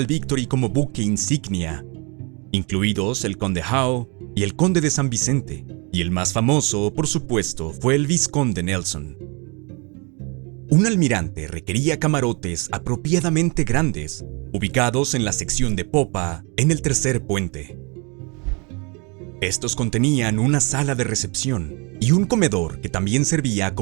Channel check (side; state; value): left; quieter; 31.3 dB